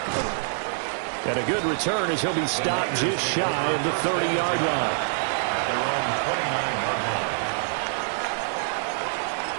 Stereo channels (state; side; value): silent; left; digital silence